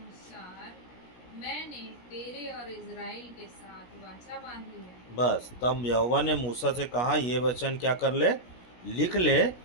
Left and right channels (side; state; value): right; late; 17 ms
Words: मैंने तेरे और इज़राइल के साथ वाचा बांधी है। बस, तब यहोवा ने मूसा से कहा, ये वचन क्या कर ले, लिख ले,